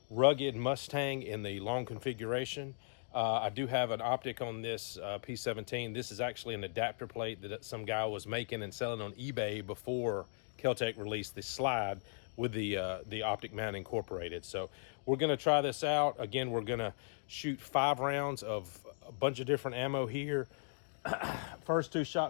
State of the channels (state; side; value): silent; right; digital silence